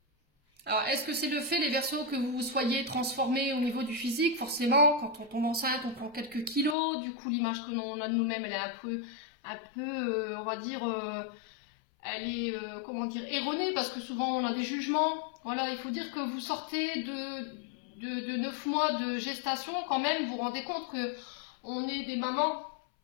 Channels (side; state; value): right; drops out; at 6.8 s